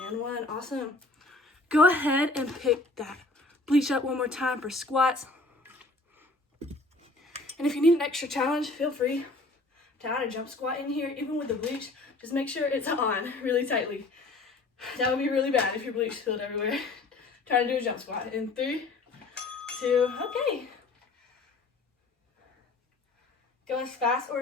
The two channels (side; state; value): right; quieter; 3.2 dB